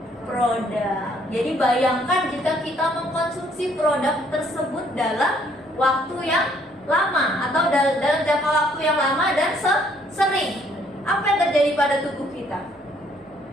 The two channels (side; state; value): both; normal; correlation 0.65